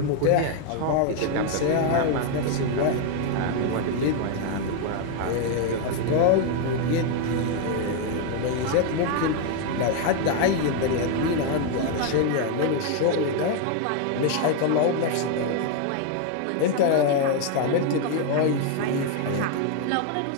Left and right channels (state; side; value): different; both; correlation 0.01